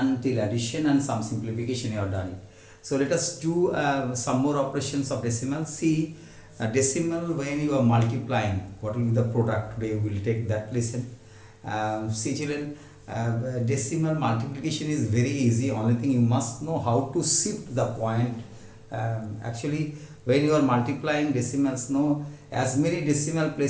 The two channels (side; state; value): both; identical; correlation 1.00